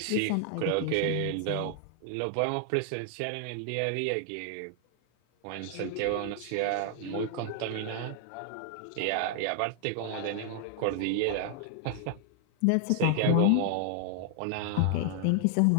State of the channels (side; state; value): both; different; correlation 0.00